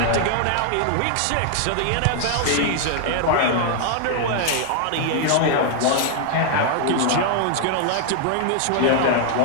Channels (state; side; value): different; both; correlation 0.00